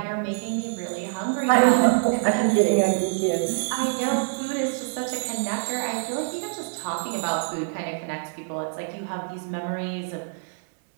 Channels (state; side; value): silent; left; 62 dB below the other